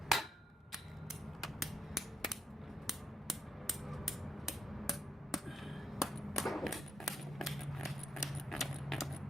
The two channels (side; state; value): both; normal; correlation 0.78